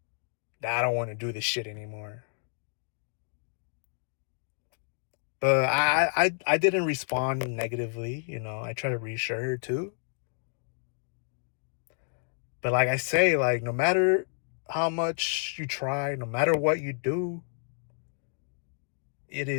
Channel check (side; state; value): right; silent; digital silence